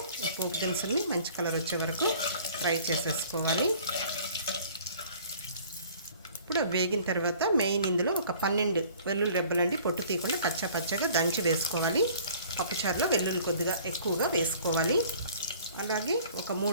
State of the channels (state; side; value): inverted; both; correlation -0.51